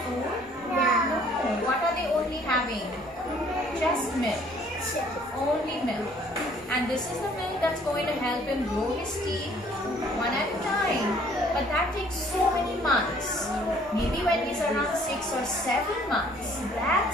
food? No. What are they only having? Just milk. Only milk. And this is the milk that's going to help him grow his teeth one at a time. But that takes so many months. Maybe when he's around 6 or 7 months,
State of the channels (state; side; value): normal; both; correlation 0.58